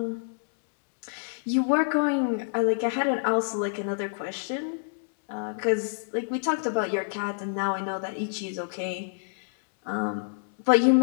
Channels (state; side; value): silent; right; digital silence